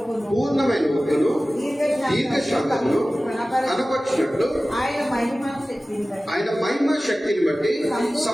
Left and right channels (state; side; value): normal; both; correlation 0.97